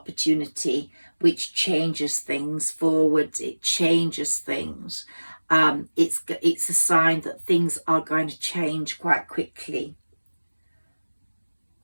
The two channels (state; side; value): inverted; both; correlation -1.00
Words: which changes things forwards. It changes things. It's a sign that things are going to change quite quickly.